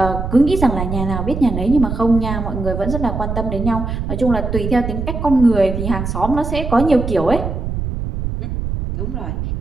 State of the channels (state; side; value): noise; right; rumble, 4 dB below the sound